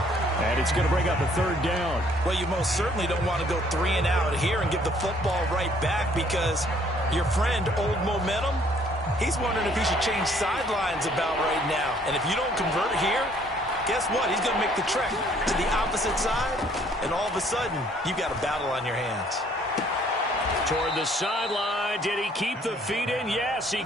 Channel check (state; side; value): normal; both; correlation 0.62